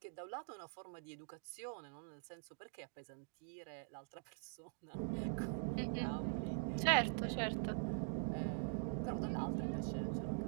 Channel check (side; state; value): left; silent; digital silence